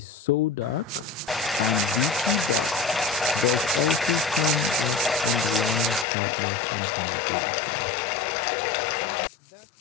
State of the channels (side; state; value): right; drops out; at 6.1 s